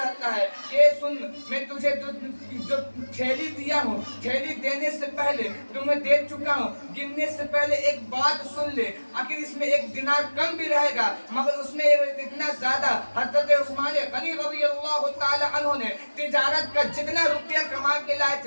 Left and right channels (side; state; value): both; inverted; correlation -1.00